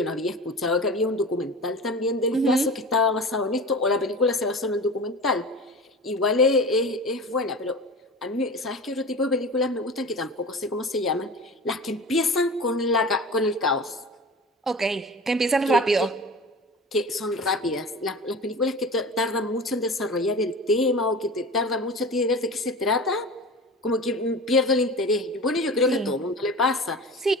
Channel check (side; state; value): both; normal; correlation 0.34